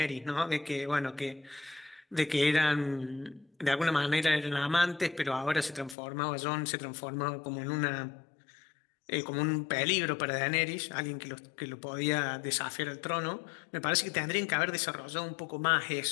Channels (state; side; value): drops out; right; at 6.0 s